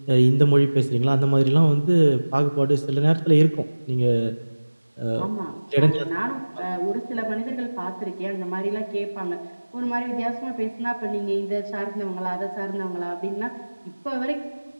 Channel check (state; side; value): inverted; both; correlation -1.00